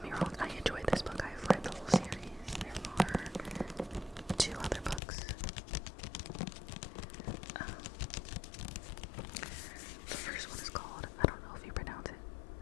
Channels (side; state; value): right; drops out; at 5.0 s